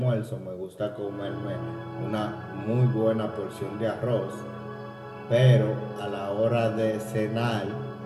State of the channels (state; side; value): identical; both; correlation 1.00